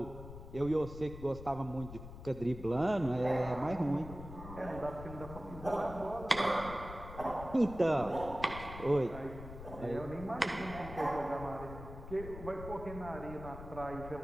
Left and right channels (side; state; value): left; noise; rumble, 12 dB below the sound